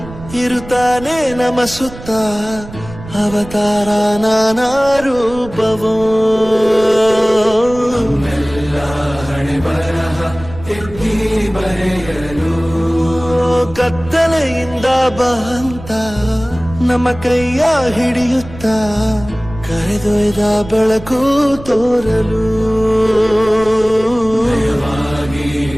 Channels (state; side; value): noise; right; rumble, 15 dB below the sound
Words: ಇರುತ್ತಾನೆ ನಮ ಸುತ್ತ ಅವತಾರ ನಾನಾ ರೂಪವೋ ಹಣೆ ಬರಹ ತಿದ್ದಿ ಬರೆಯಲು ಕತ್ತಲೆಯಿಂದ ಬಂತ ನಮ್ಮ ಕೈಯ ಹಿಡಿಯುತ್ತ ಕರೆದೊಯ್ದ ಬೆಳಕು ತೋರಲು